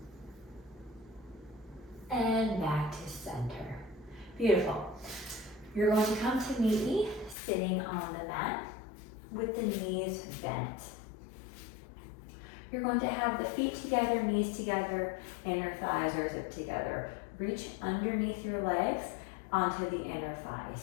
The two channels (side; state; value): right; drops out; at 7.4 s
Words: And back to center. Beautiful. You're going to come to meet me sitting on the mat with the knees bent. You're going to have the feet together, knees together, inner thighs are zipped together. Reach underneath your legs onto the inner